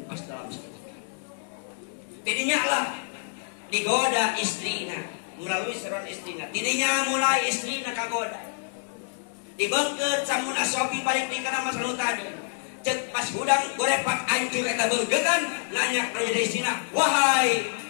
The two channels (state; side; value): silent; right; digital silence